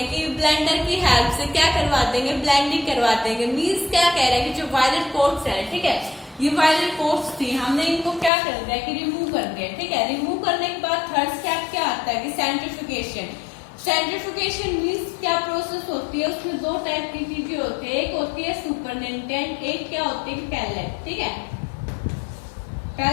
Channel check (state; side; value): drops out; right; at 8.3 s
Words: कि ब्लेंडर की हेल्प से क्या करवा देंगे, ब्लेंडिंग करवा देंगे। मीन्स क्या कह रहे हैं कि जो वायरल कोट्स है, ठीक है, ये वायरल कोट्स थी, हमने इनको क्या कर दिया कि रिमूव कर दिया। ठीक है, रिमूव करने के बाद थर्ड स्टेप क्या आता है कि सेंट्रीफ्यूगेशन। सेंट्रीफ्यूगेशन मीन्स क्या प्रोसेस होती है, उसमें दो टाइप की चीजें होती है, एक होती है सुपरनेटेंट, एक क्या होती है पैलेट। ठीक है,